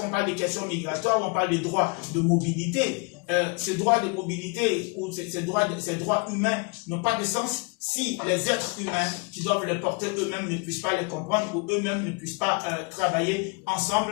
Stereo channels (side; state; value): right; quieter; 30.7 dB